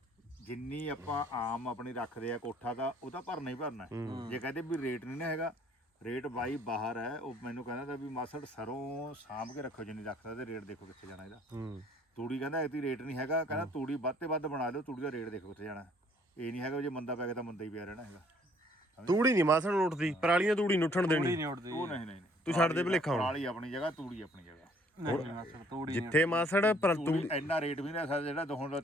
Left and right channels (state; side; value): normal; both; correlation 0.61